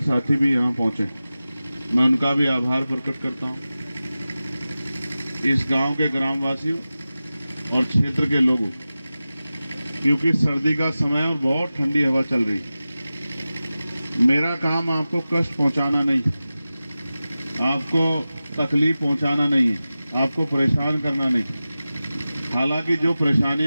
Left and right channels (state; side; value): inverted; both; correlation -0.95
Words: साथी भी यहाँ पहुंचे, मैं उनका भी आभार प्रकट करता हूँ। इस गांव के ग्रामवासियों और क्षेत्र के लोगों, क्योंकि सर्दी का समय और बहुत ठंडी हवा चल रही है। मेरा काम आपको कष्ट पहुंचाना नहीं है, आपको तकलीफ पहुंचाना नहीं है, आपको परेशान करना नहीं है। हालांकि जो